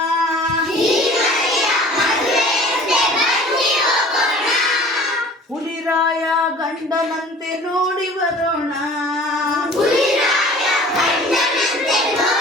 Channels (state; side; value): normal; both; correlation 0.46